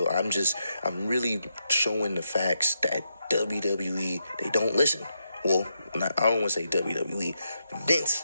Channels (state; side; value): inverted; both; correlation -0.82